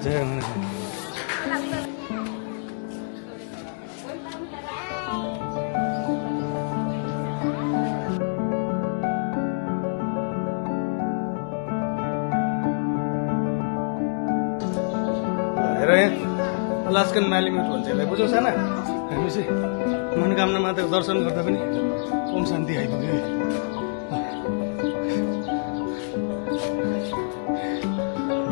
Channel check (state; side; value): silent; right; digital silence